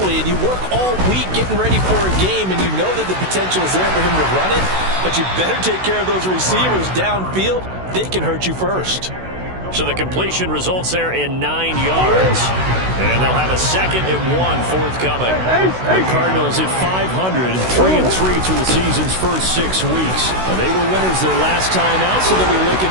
and you work all week getting ready for a game, and you know that the potential is there for him to run it, but you better take care of those receivers downfield. They can hurt you first. So the completion results there in 9 yards. And they'll have a 2nd and 1 forthcoming. The Cardinals at 500, 3-3 through the season's first 6 weeks. And they were winners their last time out, so they'll be looking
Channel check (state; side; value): late; left; 16 ms